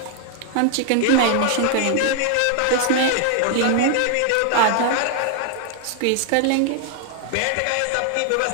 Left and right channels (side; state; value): both; different; correlation 0.00